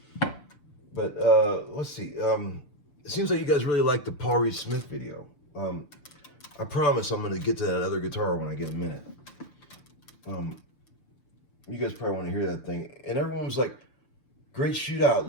But let's see. It seems like you guys really like the Paul Reed Smith video. I promise I'm going to get to that other guitar when I get a minute. You guys probably want to hear that thing. And everyone was like, great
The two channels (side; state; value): right; late; 6.8 ms